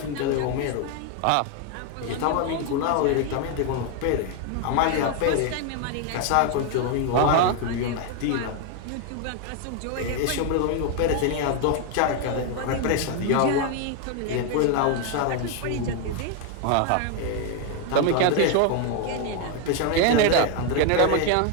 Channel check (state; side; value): different; both; correlation 0.01